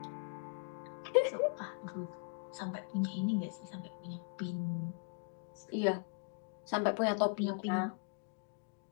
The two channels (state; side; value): quieter; right; 39.9 dB